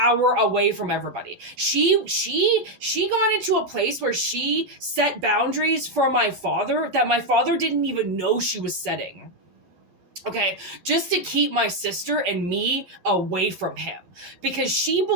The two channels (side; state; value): left; late; 11 ms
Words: away from everybody. She got into a place where she set boundaries for my father that my father didn't even know she was setting. Okay, just to keep my sister and me away from him, because she